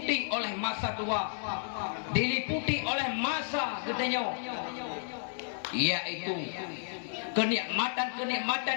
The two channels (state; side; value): silent; right; digital silence